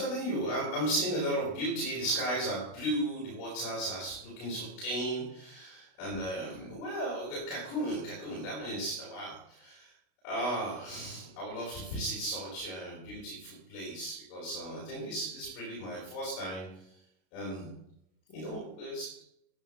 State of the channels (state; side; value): late; right; 32 ms